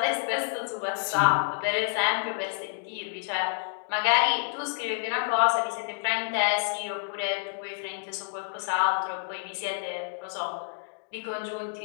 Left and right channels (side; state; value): right; silent; digital silence